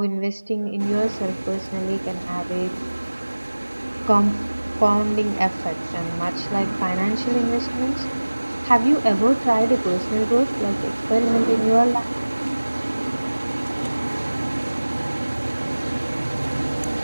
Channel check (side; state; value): both; inverted; correlation -1.00